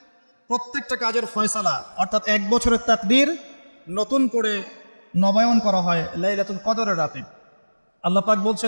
প্রত্যেকটা কাজের ফয়সালা অর্থাৎ 1 বছরের তাকদীর নতুন করে নবায়ন করা হয় লাইলাতুল কদরের রাতে। আল্লাহ পাক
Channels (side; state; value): both; inverted; correlation -1.00